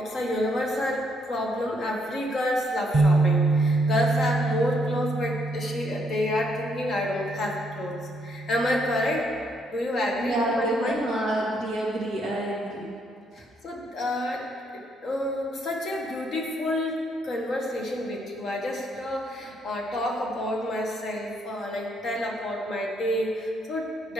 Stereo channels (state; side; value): normal; both; correlation 0.73